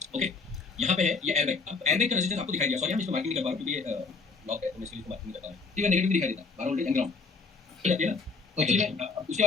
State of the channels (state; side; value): quieter; right; 4.4 dB